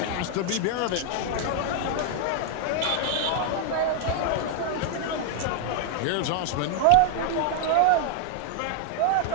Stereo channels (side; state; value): both; different; correlation 0.00